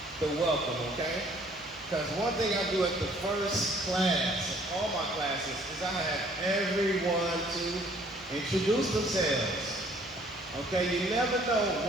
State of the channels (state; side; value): noise; right; hum, 25 dB below the sound